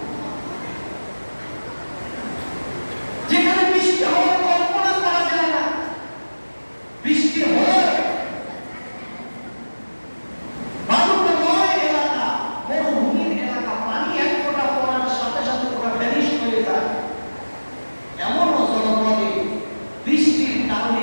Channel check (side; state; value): both; inverted; correlation -1.00